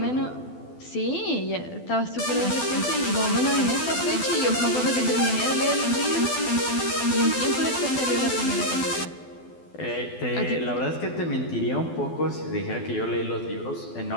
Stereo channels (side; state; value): right; late; 12 ms